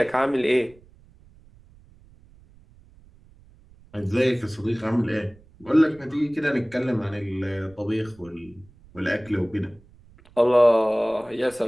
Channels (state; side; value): noise; right; rumble, 26 dB below the sound